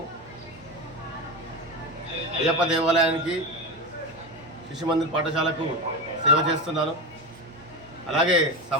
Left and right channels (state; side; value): normal; both; correlation 0.20